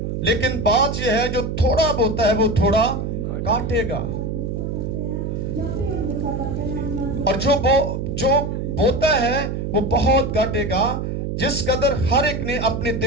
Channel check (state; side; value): noise; right; hum, 3 dB below the sound